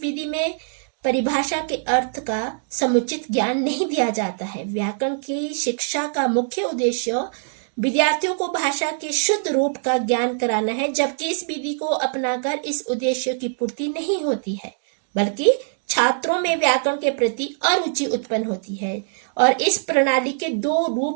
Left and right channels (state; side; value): silent; left; digital silence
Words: विधि में परिभाषा के अर्थ का समुचित ज्ञान नहीं दिया जाता है। व्याकरण की शिक्षा का मुख्य उद्देश्य विद्यार्थियों को भाषा के शुद्ध रूप का ज्ञान कराना है, जबकि इस विधि को अपनाकर इस उद्देश्य की पूर्ति नहीं होती है, बल्कि छात्रों में व्याकरण के प्रति अरुचि उत्पन्न होती है। और इस प्रणाली के दो